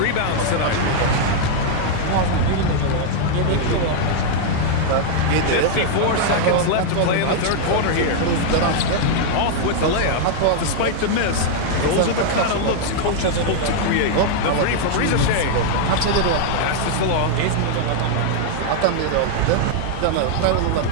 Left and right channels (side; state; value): both; different; correlation -0.01